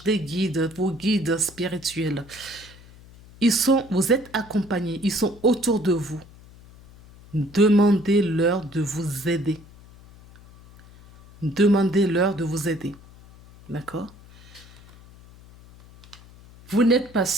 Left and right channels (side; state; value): left; noise; hum, 22 dB below the sound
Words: des guides, vos guides spirituels. Vous êtes accompagnés. Ils sont autour de vous. Demandez-leur de vous aider. Demandez-leur de vous aider. D'accord? Vous n'êtes pas